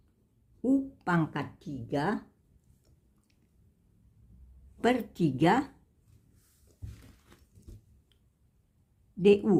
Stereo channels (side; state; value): both; identical; correlation 1.00